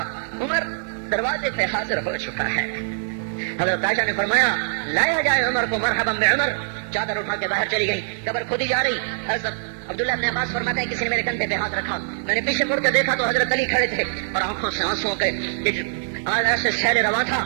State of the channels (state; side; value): silent; left; digital silence